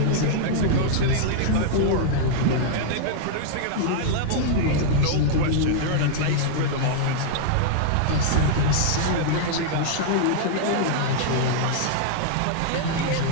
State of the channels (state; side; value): different; both; correlation -0.01